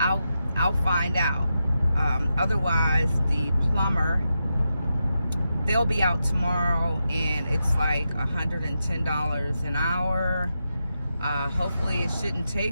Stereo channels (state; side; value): inverted; both; correlation -0.88